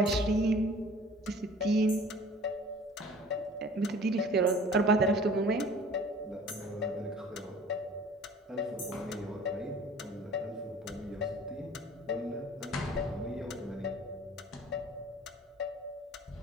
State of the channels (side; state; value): both; normal; correlation 0.47